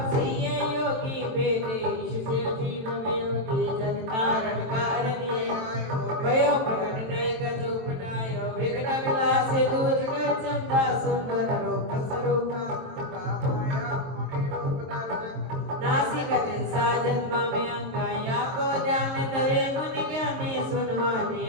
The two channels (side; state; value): left; late; 23 ms